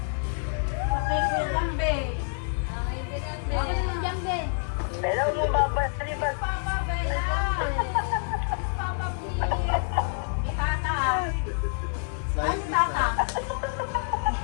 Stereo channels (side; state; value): right; silent; 60 dB below the other